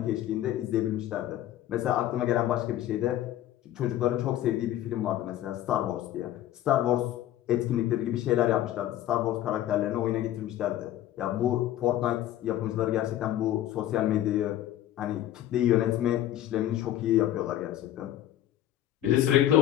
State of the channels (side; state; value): right; quieter; 12.8 dB